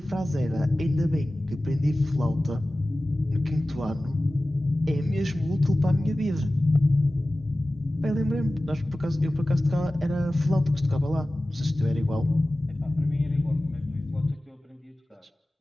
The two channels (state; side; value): normal; both; correlation 0.96